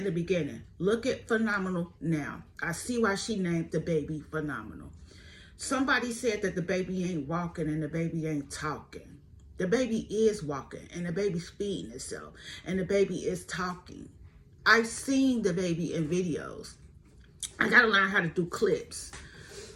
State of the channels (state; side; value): identical; both; correlation 1.00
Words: the beginning. Look at Phenomenal now. I see why she named the baby Phenomenal. Somebody said that the baby ain't walking and the baby ain't talking. The baby is walking and the baby's feeding itself and the baby is talking. I've seen the baby in videos. I gotta learn how to do clips